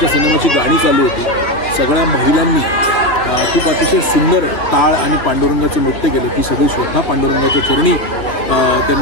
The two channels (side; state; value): right; late; 3.0 ms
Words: सिनेमाची गाणी चालू होती. सगळ्या महिलांनी खूप अतिशय सुंदर टाळ आणि पांडुरंगाचं नृत्य केलं. ती सगळी श्रद्धा पांडुरंगाच्या चरणी